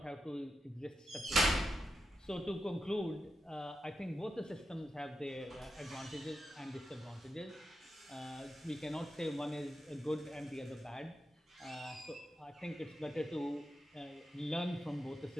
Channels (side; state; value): both; normal; correlation 0.89